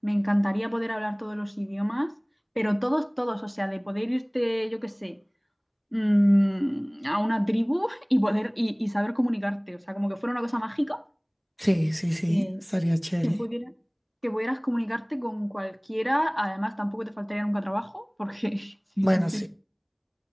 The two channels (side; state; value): both; identical; correlation 1.00